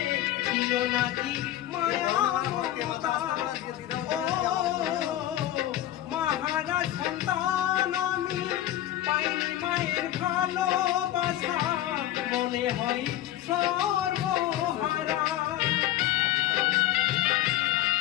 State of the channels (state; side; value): quieter; right; 13.5 dB